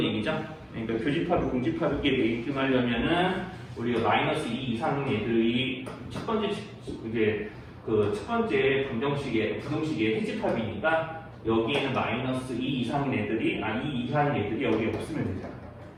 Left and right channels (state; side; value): identical; both; correlation 1.00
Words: 얘기죠. 그러니까 교집합이 공집합이게 되게끔 하려면은 우리가 마이너스 2 이상 애들이 첫 번째 이제 그 첫 번째 부등식의 해집합이니까 여기에는 마이너스 2 이상인 애들이 2 이하인 애들이 여기 없으면 되잖아.